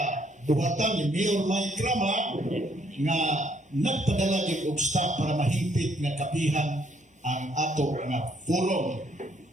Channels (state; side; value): normal; both; correlation 0.68